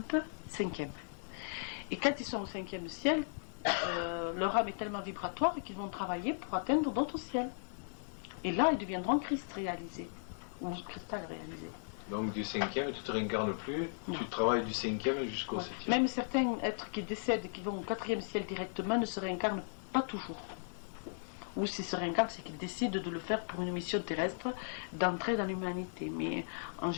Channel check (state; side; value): silent; right; 53 dB below the other